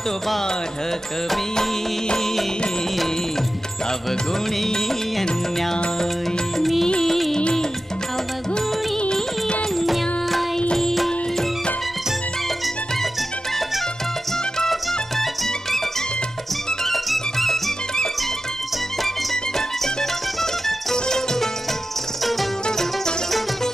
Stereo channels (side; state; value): both; normal; correlation 0.93